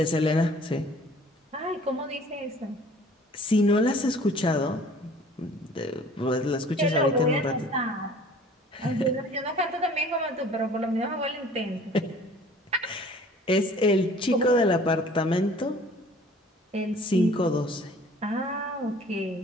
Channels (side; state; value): both; normal; correlation 0.50